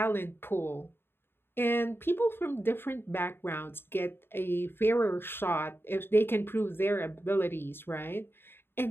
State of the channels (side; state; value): right; late; 0.11 ms